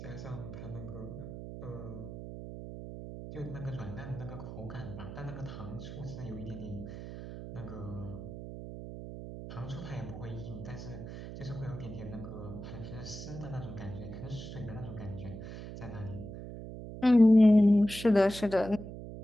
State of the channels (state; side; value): noise; right; hum, 10 dB below the sound